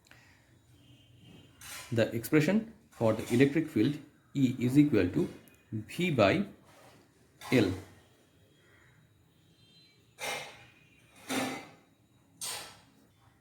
The expression for the electric field E is equal to V by L.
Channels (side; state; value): both; identical; correlation 1.00